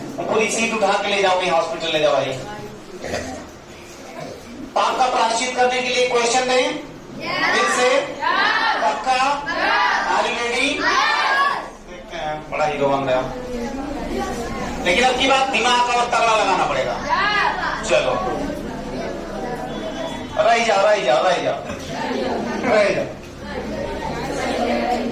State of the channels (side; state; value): both; identical; correlation 1.00